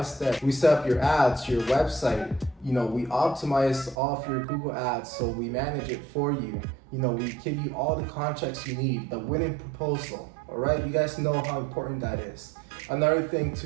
step. We set up your ads, your website, we optimize all of your Google ads, so we manage it for you. We give you all the contracts you need, the winning proposal. All right, you guys know how important that is. Another thing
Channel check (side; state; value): left; drops out; at 4.0 s